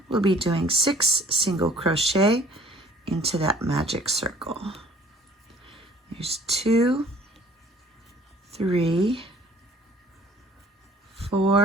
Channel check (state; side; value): normal; both; correlation 0.55